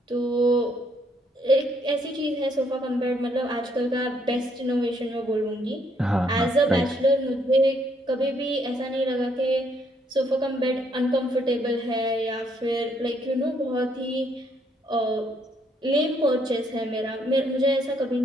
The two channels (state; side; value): normal; both; correlation 0.70